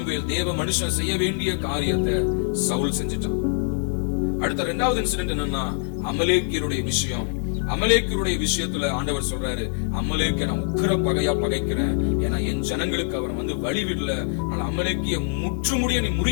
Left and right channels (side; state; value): right; silent; 63 dB below the other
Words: தேவ மனுஷன் செய்ய வேண்டிய காரியத்தை சவுல் செஞ்சிட்டான். அடுத்த இரண்டாவது இன்சிடென்ட் என்னன்னா, அமலேக்கியருடைய விஷயம். அமலேக்கியருடைய விஷயத்துல ஆண்டவர் சொல்றாரு, அமலேக்கிய நான் உக்கிர பகையா பகைக்கிறேன். ஏன்னா என் ஜனங்களுக்கு அவன் வழி விடல. அமலேக்கிய முற்றுமுடிய நீ